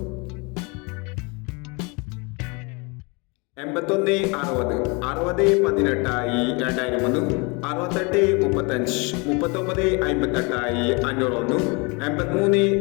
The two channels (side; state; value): right; quieter; 29.8 dB